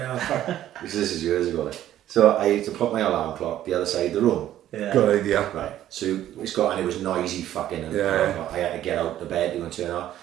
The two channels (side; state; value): left; quieter; 12.4 dB